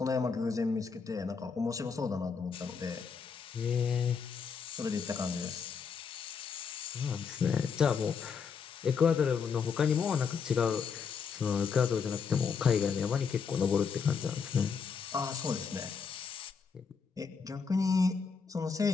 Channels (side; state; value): right; quieter; 5.9 dB